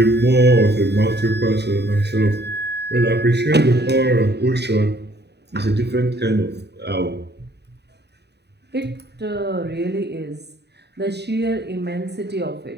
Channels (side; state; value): left; late; 0.49 ms